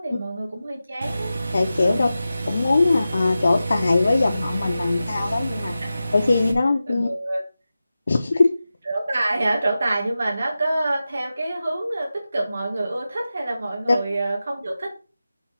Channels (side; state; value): both; inverted; correlation -0.93